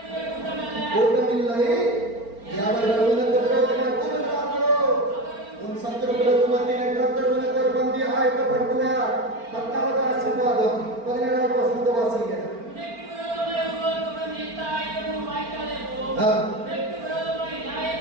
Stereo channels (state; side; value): late; left; 4.4 ms